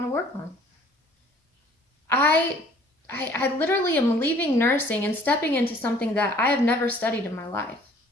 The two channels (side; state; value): both; normal; correlation 0.55